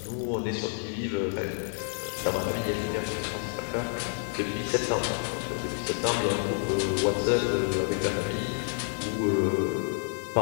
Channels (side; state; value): right; silent; digital silence